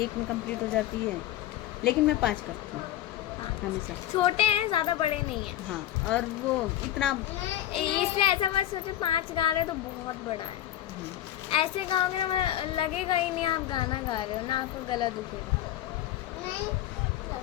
में कंप्लीट हो जाती है, लेकिन मैं 5 करती हूँ हमेशा। छोटे हैं, ज्यादा बड़े नहीं है। हाँ, और वो इतना इसलिए ऐसा मत सोचो 5 गा रहे तो बहुत बड़ा है। ऐसे गाओगे ना, लगेगा ही नहीं आप गाना गा रहे हो, ना आपको गला दुखेगा।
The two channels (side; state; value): right; quieter; 12.8 dB